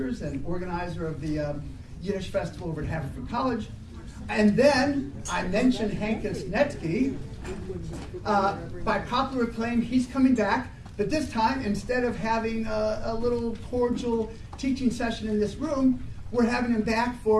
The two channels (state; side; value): identical; both; correlation 1.00